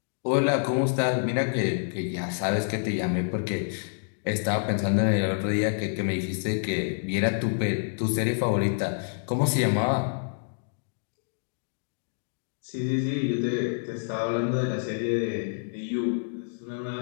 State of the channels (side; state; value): right; silent; digital silence